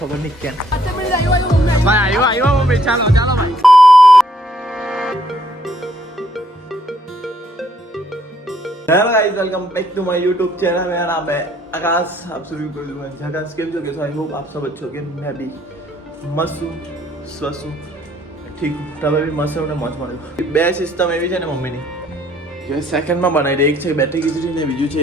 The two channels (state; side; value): normal; both; correlation 0.67